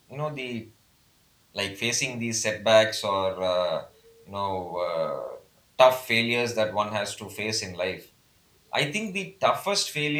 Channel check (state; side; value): identical; both; correlation 1.00